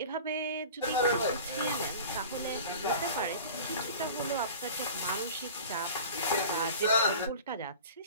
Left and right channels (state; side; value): inverted; both; correlation -0.39